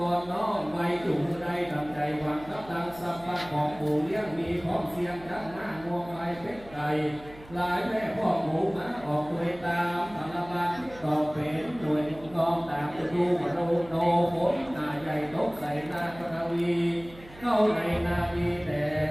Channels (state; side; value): noise; right; hum, 20 dB below the sound